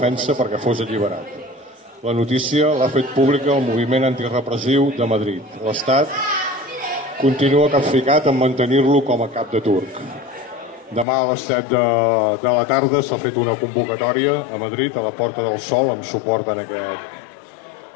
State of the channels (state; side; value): drops out; right; at 11.1 s